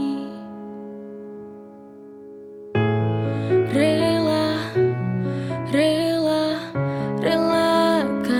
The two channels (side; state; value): both; identical; correlation 1.00